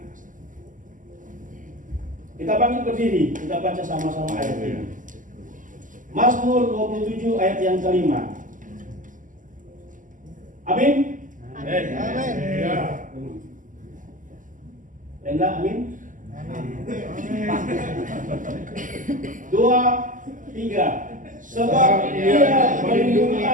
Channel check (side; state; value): left; late; 0.38 ms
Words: Kita bangkit berdiri, kita baca sama-sama ayat ini. Mazmur 27 ayat yang kelima. Amin. Amin. Ya. Enggak, amin. 2, 3. Sebab Ia melindungi